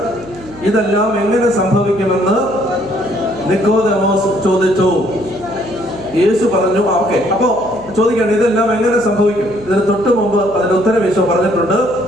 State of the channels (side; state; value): right; noise; hum, 19 dB below the sound